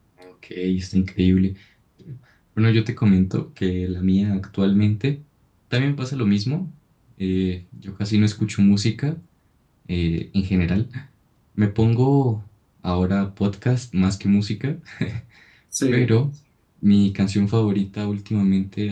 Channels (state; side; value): identical; both; correlation 1.00